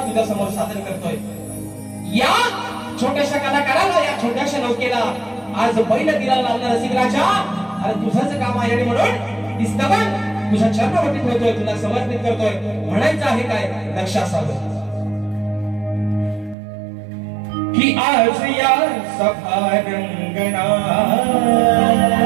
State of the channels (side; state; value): left; drops out; at 16.6 s